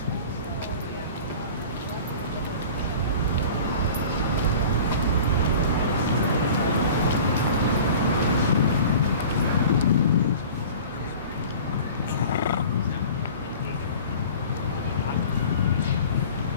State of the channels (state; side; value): inverted; both; correlation -0.42